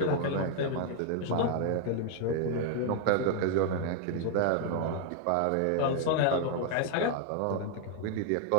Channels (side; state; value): both; different; correlation 0.00